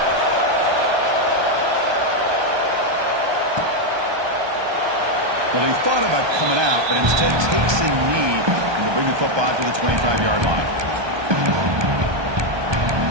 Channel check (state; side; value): late; left; 1.2 ms